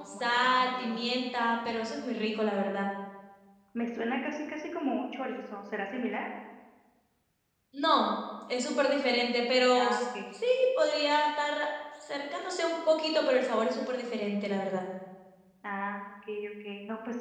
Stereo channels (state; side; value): identical; both; correlation 1.00